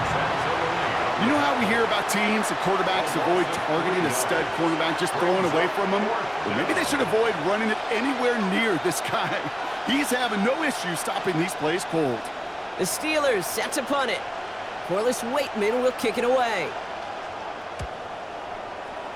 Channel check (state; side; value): identical; both; correlation 1.00